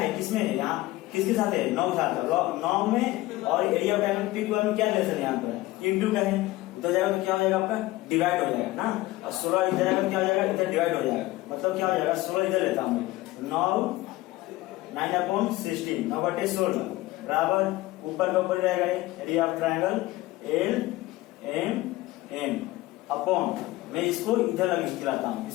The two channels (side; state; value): right; quieter; 18.3 dB